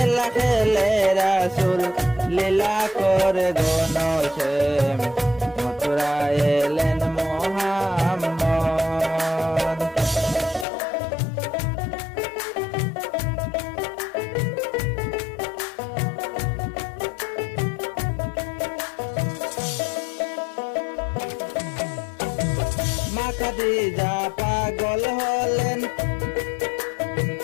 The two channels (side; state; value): right; drops out; at 10.7 s